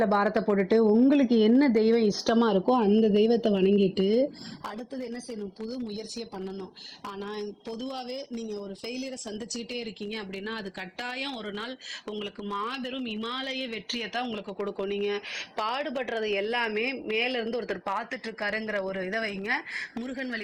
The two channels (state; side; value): identical; both; correlation 1.00